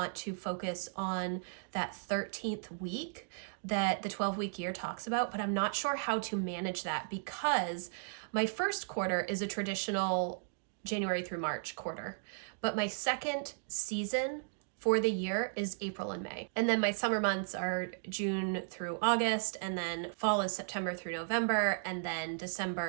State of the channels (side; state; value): left; silent; digital silence